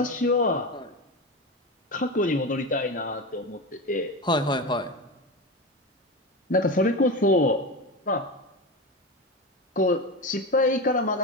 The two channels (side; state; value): both; normal; correlation 0.22